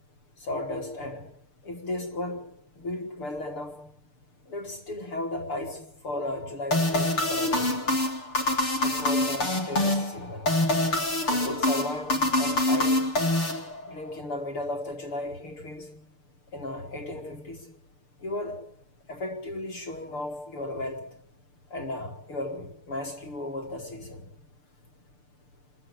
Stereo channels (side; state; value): right; late; 6.8 ms